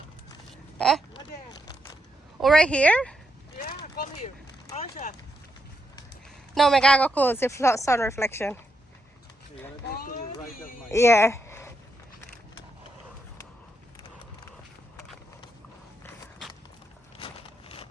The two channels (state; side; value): normal; both; correlation 0.81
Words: Huh? Oh, right here? Yeah, come here. Aisha. No, I gotta go close the sun reflection. Yeah.